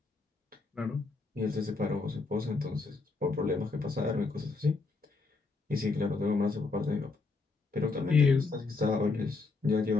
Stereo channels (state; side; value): quieter; right; 4.0 dB